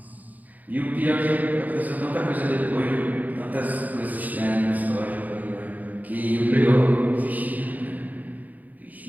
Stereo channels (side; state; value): left; late; 0.079 ms